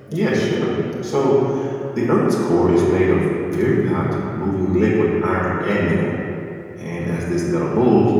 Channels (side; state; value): both; identical; correlation 1.00